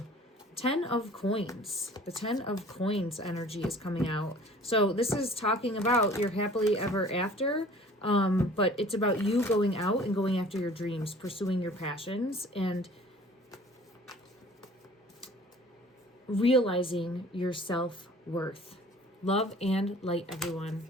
10 of coins. The 10 of coins energy is coming out. So this is talking about your happily ever after, but it's about you going out and going after your dreams, pursuing your passions, and realizing your self-worth. Love and light, everyone.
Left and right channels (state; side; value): normal; both; correlation 0.49